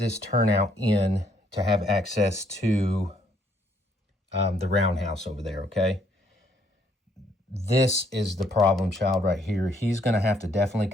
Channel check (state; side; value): normal; both; correlation 0.69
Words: turnout in to have access to the roundhouse over there, okay? This is the problem child right here. He's going to have to definitely